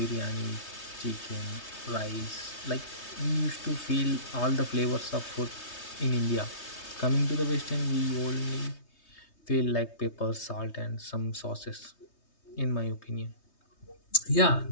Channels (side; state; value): right; late; 3.2 ms